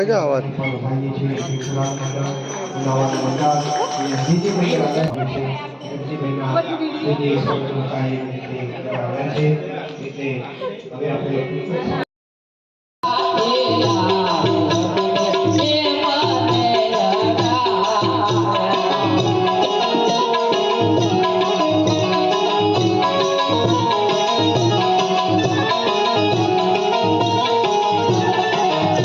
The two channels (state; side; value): identical; both; correlation 1.00